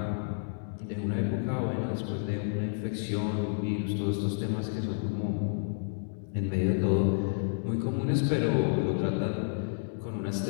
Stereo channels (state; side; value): silent; right; digital silence